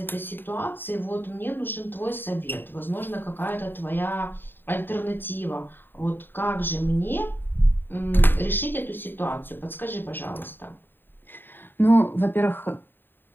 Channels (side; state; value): right; late; 0.095 ms